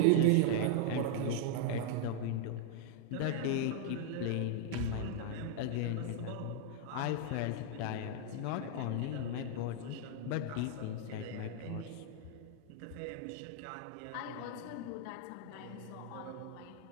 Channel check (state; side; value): different; both; correlation 0.00